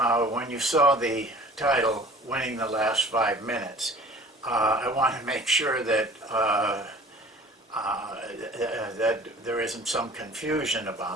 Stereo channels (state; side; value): normal; both; correlation 0.45